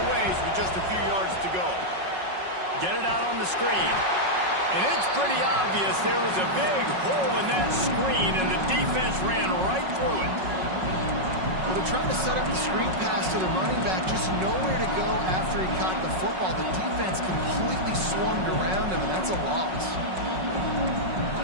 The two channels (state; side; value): late; left; 5.4 ms